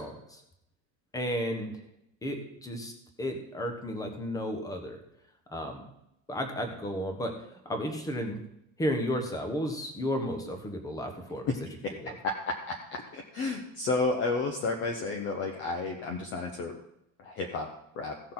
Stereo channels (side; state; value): both; normal; correlation 0.36